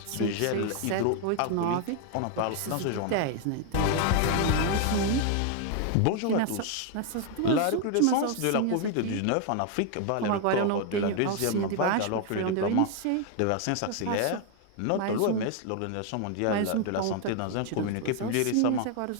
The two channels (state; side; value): different; both; correlation 0.00